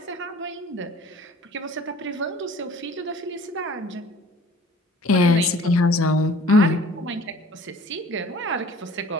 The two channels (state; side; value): normal; both; correlation 0.49